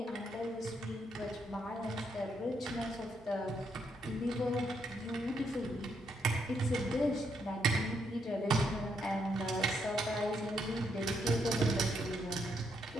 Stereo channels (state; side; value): normal; both; correlation 0.76